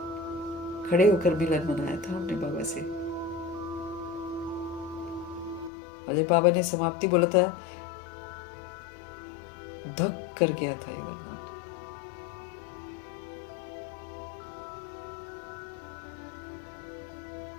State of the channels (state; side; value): drops out; right; at 5.7 s